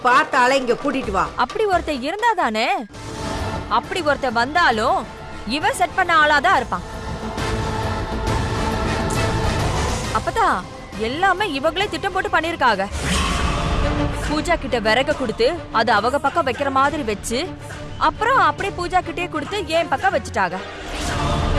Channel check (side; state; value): both; identical; correlation 1.00